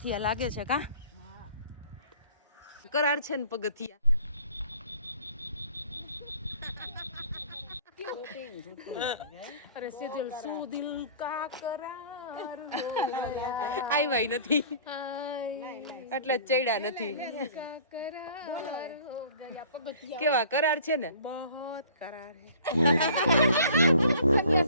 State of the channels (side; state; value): both; inverted; correlation -0.49